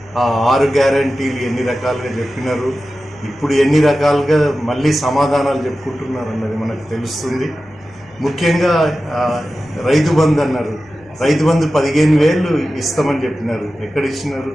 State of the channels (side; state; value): left; noise; hum, 28 dB below the sound